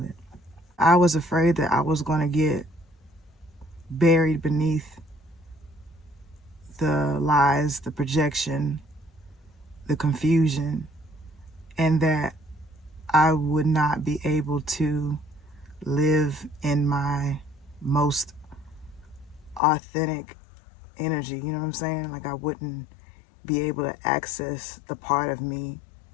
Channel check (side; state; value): right; drops out; at 19.6 s